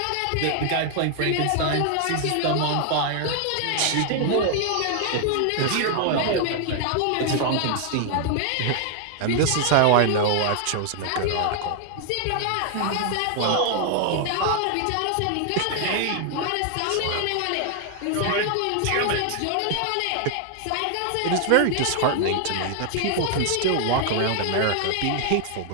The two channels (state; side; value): different; both; correlation 0.00